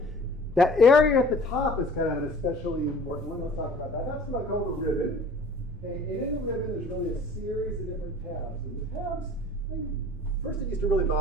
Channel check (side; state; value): both; normal; correlation 0.48